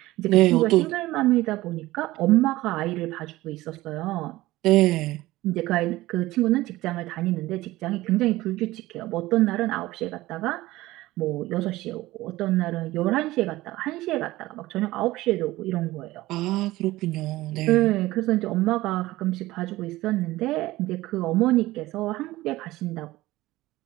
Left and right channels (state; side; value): quieter; left; 17.8 dB